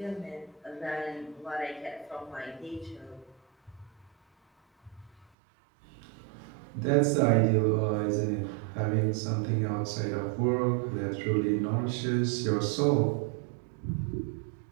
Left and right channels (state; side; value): drops out; left; at 5.2 s